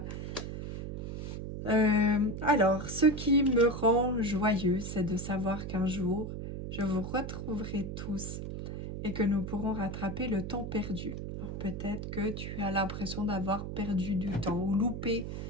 Alors, ce qui me rend joyeux, c'est de savoir qu'un jour, je vous retrouverai tous et que nous pourrons rattraper le temps perdu. Peut-être que tu as l'impression d'avoir perdu du temps ou loupé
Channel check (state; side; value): noise; right; hum, 6 dB below the sound